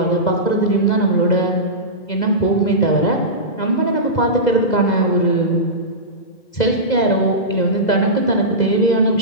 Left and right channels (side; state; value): right; late; 2.0 ms